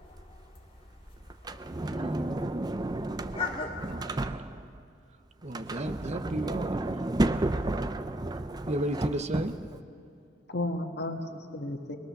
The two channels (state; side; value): normal; both; correlation 0.71